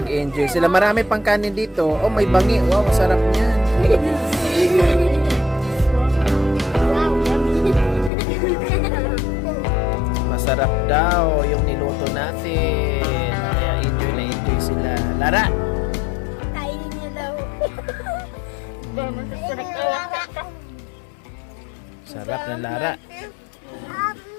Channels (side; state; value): right; drops out; at 8.1 s